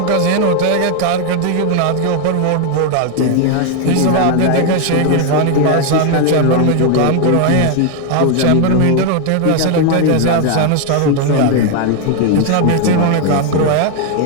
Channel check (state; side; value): different; both; correlation 0.00